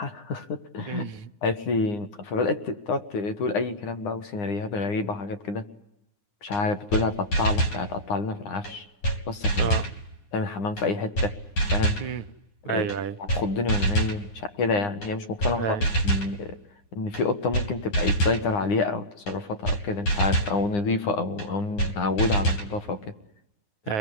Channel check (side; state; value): right; late; 9.6 ms